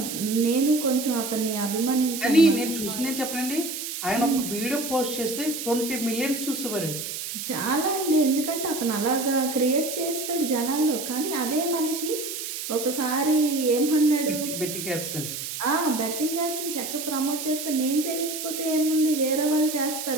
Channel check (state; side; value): noise; right; hiss, 6 dB below the sound